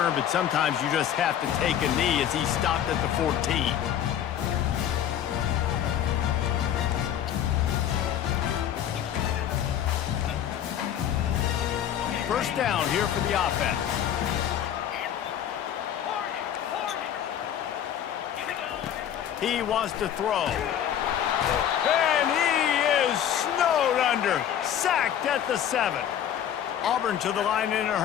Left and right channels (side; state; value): right; quieter; 10.1 dB